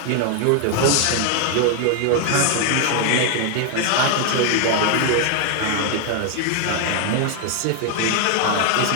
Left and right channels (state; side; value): different; both; correlation 0.00